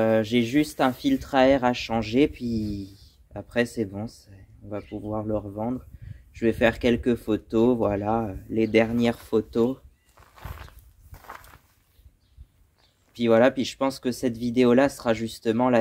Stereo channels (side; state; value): both; identical; correlation 1.00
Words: juste un filtre à air à changer, puis après c'est bon, on va pouvoir le revendre. Je vais faire quelques photos, voilà, les dernières photos. Puis voilà, puis je pense que cette vidéo-là sera justement